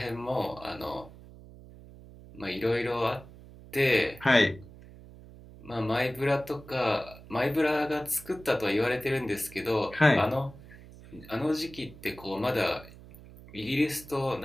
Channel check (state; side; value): noise; right; hum, 19 dB below the sound